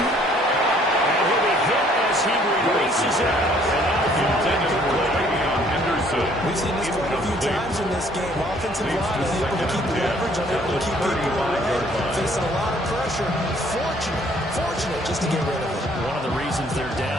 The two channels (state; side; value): normal; both; correlation 0.61